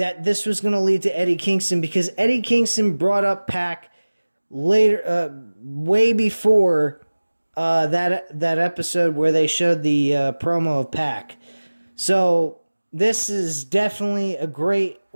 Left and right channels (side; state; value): both; inverted; correlation -1.00